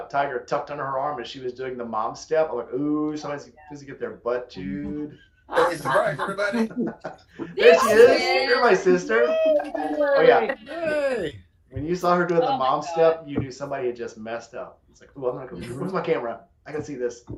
Tiger tucked under her arm as she was doing the mom step, I'm like, ooh, somebody's supposed to get their butt chewed. Hey, surprise, everybody. There she is. You're my sister. Oh, yeah. Hey. When you saw her doing the mom step, you knew somebody had just messed up. It's like, ooh, I'm not going to. Where's my camera? I can see this.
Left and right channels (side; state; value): both; identical; correlation 1.00